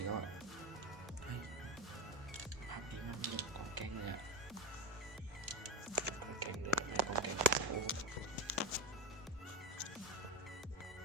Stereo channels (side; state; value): both; normal; correlation 0.20